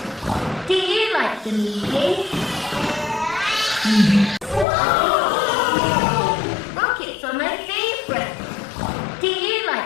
Do you like the meeting? Rockets are my favorite. Do you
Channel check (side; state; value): right; drops out; at 4.7 s